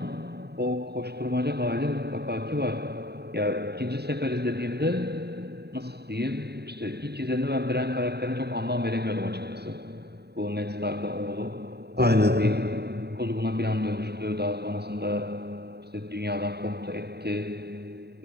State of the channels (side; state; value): left; late; 0.48 ms